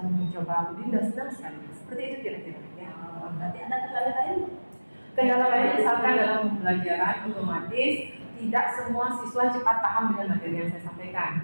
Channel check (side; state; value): both; inverted; correlation -1.00